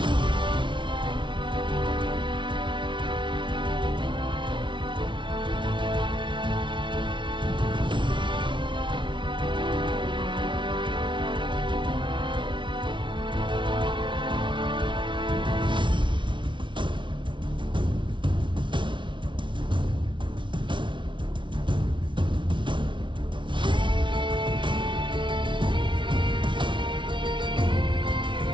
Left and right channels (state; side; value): late; left; 0.24 ms